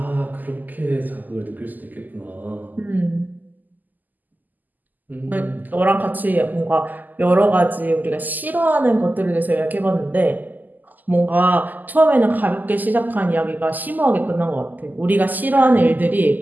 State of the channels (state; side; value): late; left; 0.084 ms